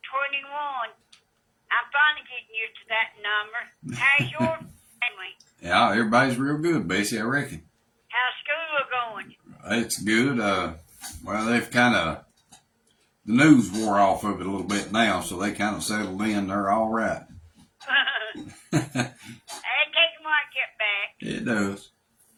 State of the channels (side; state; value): both; identical; correlation 1.00